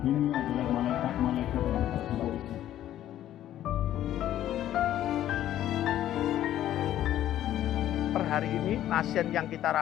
Ini adalah malaikat-malaikat yang bertugas polisi. Per hari ini pasien yang kita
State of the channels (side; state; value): right; quieter; 12.3 dB